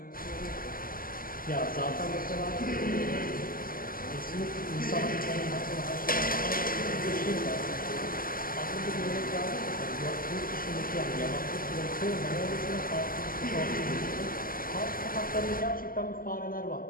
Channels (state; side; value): late; right; 0.42 ms